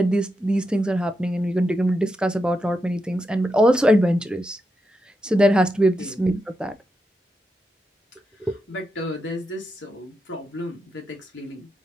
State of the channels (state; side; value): normal; both; correlation 0.86